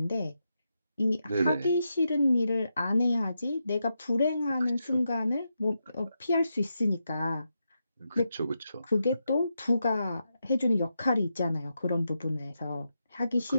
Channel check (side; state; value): both; inverted; correlation -0.86